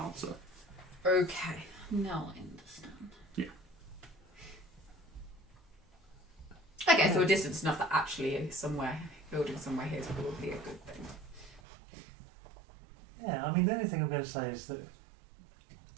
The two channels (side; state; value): left; drops out; at 11.6 s